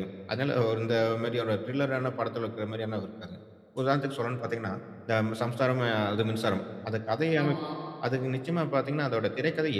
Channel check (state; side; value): identical; both; correlation 1.00